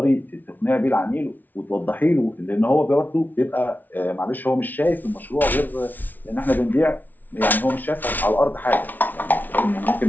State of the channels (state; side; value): late; right; 0.083 ms